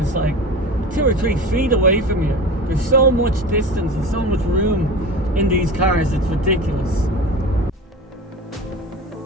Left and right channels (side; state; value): both; normal; correlation 0.32